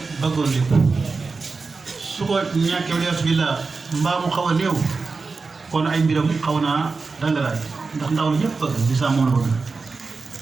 bëggoon lépp su ko ñàkkee walees bi la mbaa mu xaw a néew kon ay mbiram xaw naa dangalaay ndax ndaw la ñëpp bëgg di saa moom la bëgg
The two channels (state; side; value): quieter; left; 4.3 dB